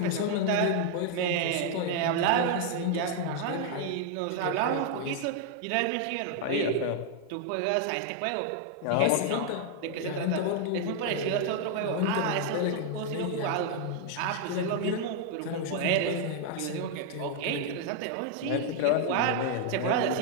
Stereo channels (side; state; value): both; different; correlation 0.00